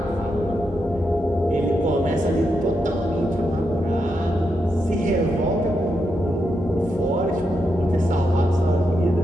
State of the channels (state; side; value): normal; both; correlation 0.84